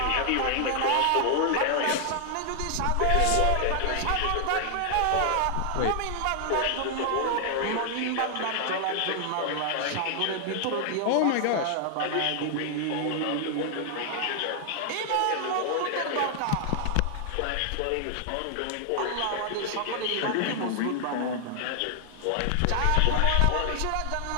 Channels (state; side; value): different; both; correlation 0.00